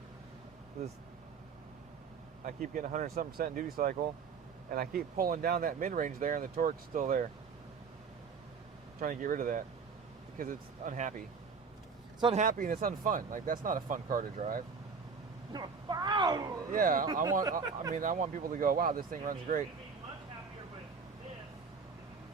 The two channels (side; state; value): left; quieter; 5.5 dB